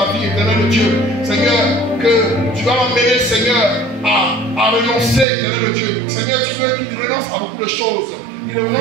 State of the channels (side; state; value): left; drops out; at 5.2 s